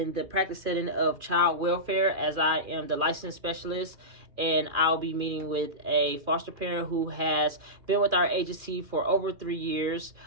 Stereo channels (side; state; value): left; late; 2.4 ms